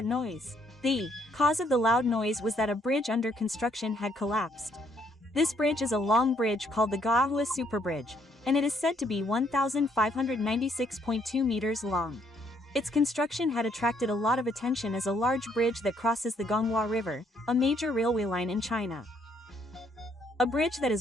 noise? The cause of the loud noise was that a bridge under construction had collapsed. This bridge is a long bridge called the Gaohui Super Bridge, and it is said to be 1,596.2 meters long. Its construction had attracted a lot of attention as a large bridge that crosses the Gonghua River, a major railway line in China. A bridge that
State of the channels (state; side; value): normal; both; correlation 0.69